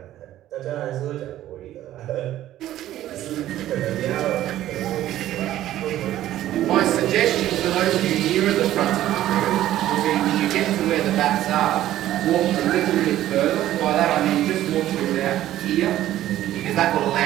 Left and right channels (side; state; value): left; quieter; 13.4 dB